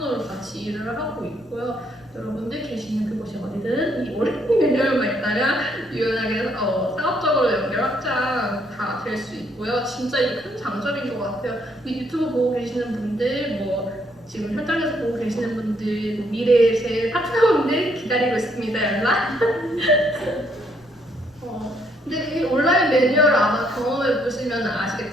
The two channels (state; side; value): noise; left; rumble, 30 dB below the sound